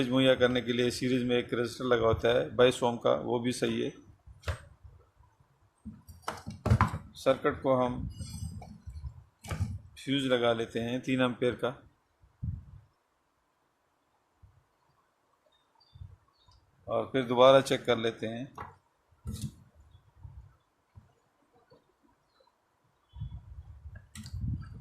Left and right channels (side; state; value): both; identical; correlation 1.00